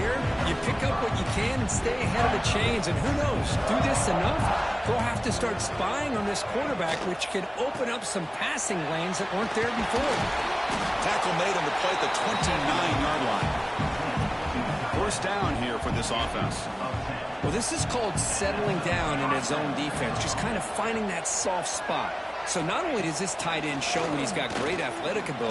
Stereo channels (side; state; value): both; identical; correlation 1.00